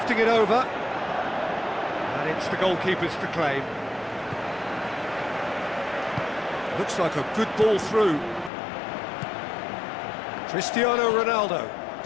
it over. And It's the goalkeepers to claim. Looks like a good ball through. Cristiano Ronaldo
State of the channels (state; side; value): drops out; right; at 8.5 s